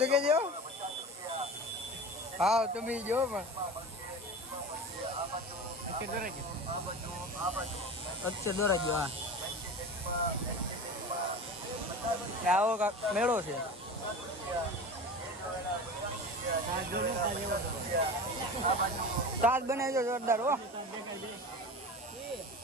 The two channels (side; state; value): both; normal; correlation 0.32